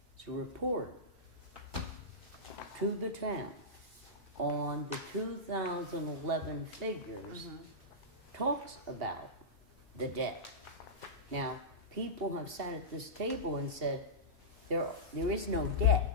report to the town on the 2011 figures Mhm. talks about the debt. Now, people have sat at this table and said, there is no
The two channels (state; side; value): normal; both; correlation -0.14